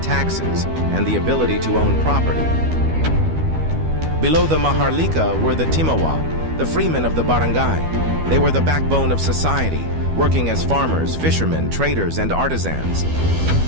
and the ability to own property. Below the Maharlika were the Timawa, the freemen of the barangay. They were the backbone of society, working as farmers, fishermen, traders, and artisans.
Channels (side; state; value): left; late; 12 ms